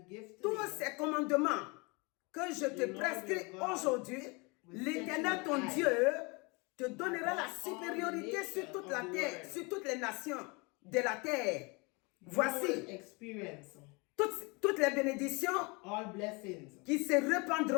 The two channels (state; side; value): quieter; right; 28.6 dB